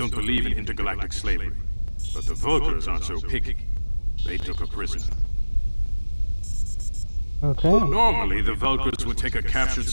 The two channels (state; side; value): inverted; both; correlation -1.00